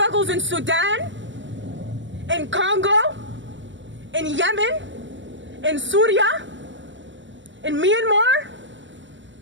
in Sudan, in Congo, in Yemen, in Syria, in Myanmar,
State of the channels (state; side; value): late; left; 0.54 ms